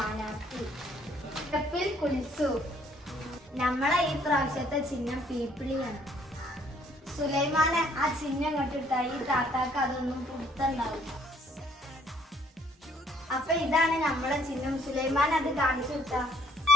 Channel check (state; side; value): normal; both; correlation 0.63